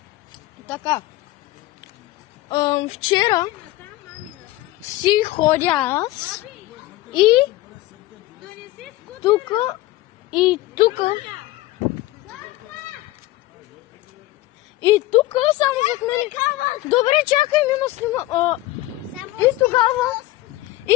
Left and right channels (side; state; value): right; quieter; 17.4 dB